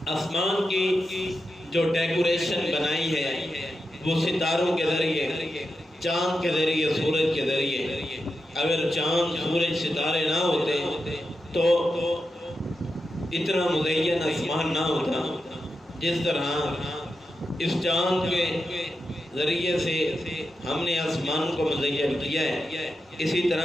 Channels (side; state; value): both; normal; correlation 0.88